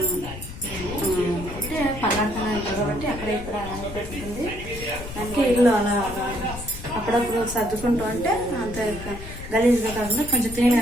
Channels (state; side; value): noise; left; rumble, 11 dB below the sound